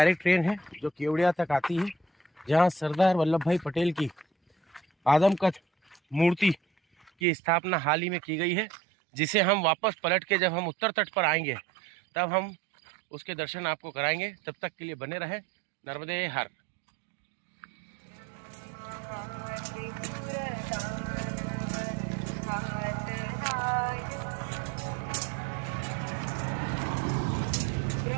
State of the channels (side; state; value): left; drops out; at 7.1 s